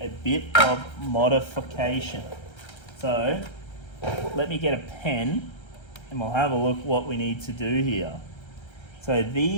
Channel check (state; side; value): late; right; 1.3 ms